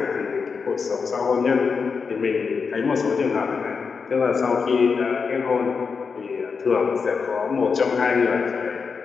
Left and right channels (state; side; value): quieter; right; 5.4 dB